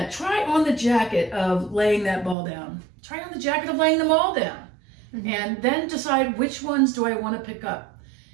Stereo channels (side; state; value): left; drops out; at 2.4 s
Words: Try on the jacket of laying that ball down. Try on the jacket of laying them all down. And then decide, which ones do I want to pick up?